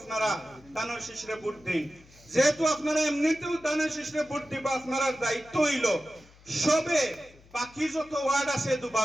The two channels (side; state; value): left; noise; hum, 26 dB below the sound